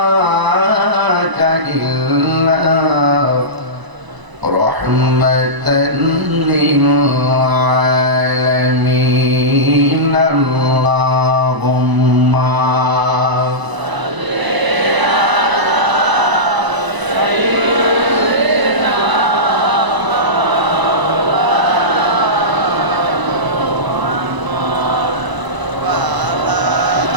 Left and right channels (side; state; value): left; late; 1.0 ms